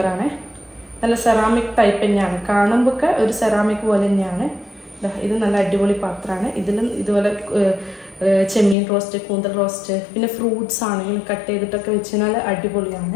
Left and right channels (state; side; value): drops out; right; at 8.8 s